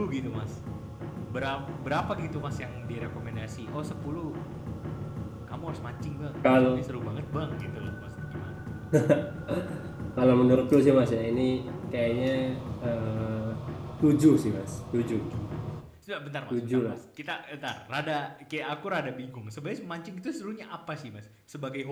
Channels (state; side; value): identical; both; correlation 1.00